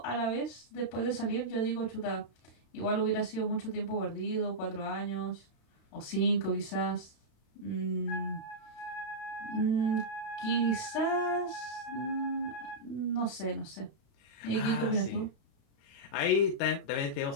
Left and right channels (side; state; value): right; late; 36 ms